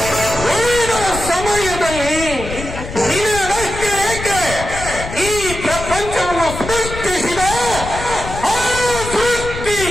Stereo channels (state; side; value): noise; left; rumble, 9 dB below the sound